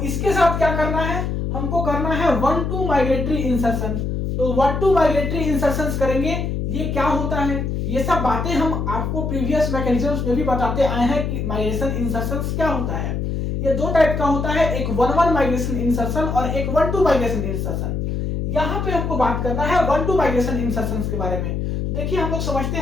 इसके साथ क्या करना है, हमको करना है 1-2 माइग्रेटरी इंसर्शन। तो 1-2 माइग्रेटरी इंसर्शंस करेंगे। ये क्या होता है, ये सब बातें हम आपको प्रीवियस मैकेनिज्म्स में भी बताते आए हैं कि माइग्रेशन इंसर्शंस क्या होता है। ये 2 टाइप का होता है, एक 1-1 माइग्रेशन इंसर्शन और एक 1-2 माइग्रेशन इंसर्शन। यहाँ पे हमको बात करना है 1-2 माइग्रेशन इंसर्शंस के बारे में। तो देखिए हम लोग समझते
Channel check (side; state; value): left; noise; hum, 2 dB below the sound